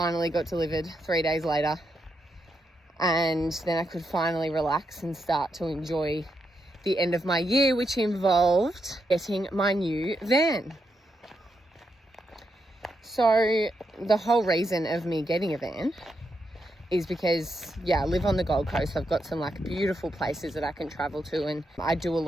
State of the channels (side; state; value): both; normal; correlation 0.83